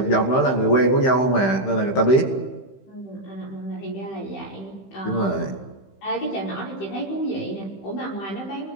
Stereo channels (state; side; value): late; right; 15 ms